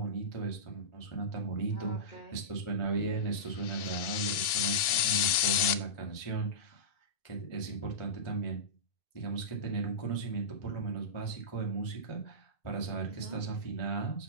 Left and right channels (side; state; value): right; late; 2.7 ms